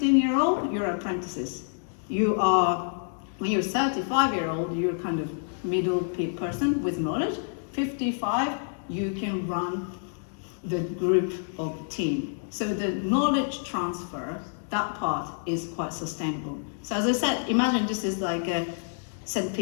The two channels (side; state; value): right; silent; digital silence